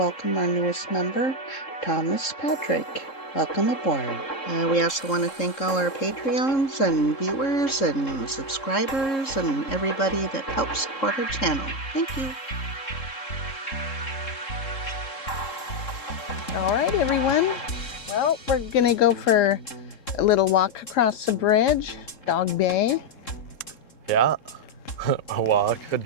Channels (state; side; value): late; right; 3.7 ms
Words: our newest member, Thomas Patrick. Welcome aboard. We also want to thank all our Patreons and viewers and subscribers and everybody that helps support our channel. Thank you. All right, everyone. Well, we're going to go for a little walk across the bridge, Dog Bay. Yeah, a walk, a